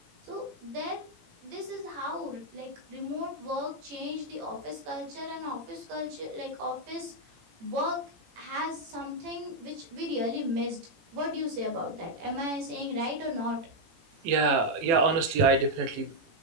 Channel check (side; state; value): left; late; 18 ms